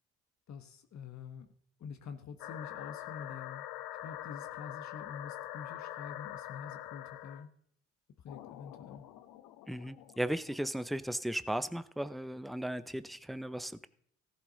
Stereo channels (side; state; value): both; normal; correlation 0.78